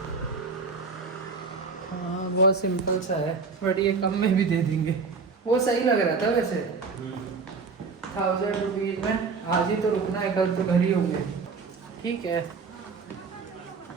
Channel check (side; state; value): left; quieter; 4.8 dB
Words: बहुत सिंपल सा है, बट ये कम में भी दे देंगे। वो सही लग रहा था वैसे, 1000 रुपीज़ में। आज ही तो रुकना है, कल तो घर ही होंगे। ठीक है,